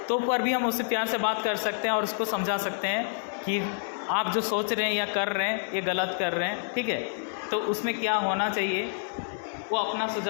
तो पर भी हम उससे प्यार से बात कर सकते हैं और उसको समझा सकते हैं कि आप जो सोच रहे हैं या कर रहे हैं ये गलत कर रहे हैं, ठीक है। तो उसमें क्या होना चाहिए वो अपना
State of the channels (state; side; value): silent; right; digital silence